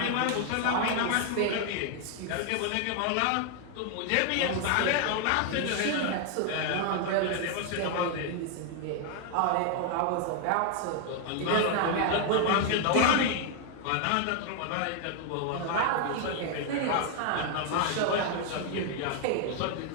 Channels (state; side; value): different; both; correlation 0.00